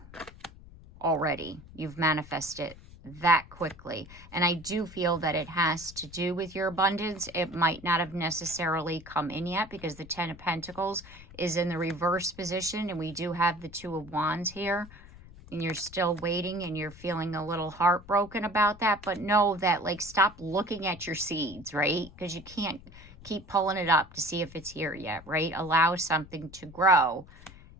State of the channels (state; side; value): noise; left; rumble, 20 dB below the sound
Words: already. You've manifested that quickly. And I do feel that it has to do with your abundance. It might not have necessarily come in yet because the Ten of Pentacles is in the reverse position. And we do have the Two of Wands here. And you're still waiting and you're feeling a little heartbroken about that. But know that, like, stop looking at your seeds, right? Because you can't keep pulling it up to see if it's here yet, right? Allow something to grow.